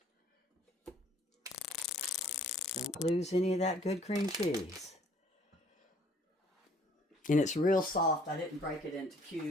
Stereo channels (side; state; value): both; normal; correlation 0.59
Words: Don't lose any of that good cream cheese. And it's real soft. I didn't break it into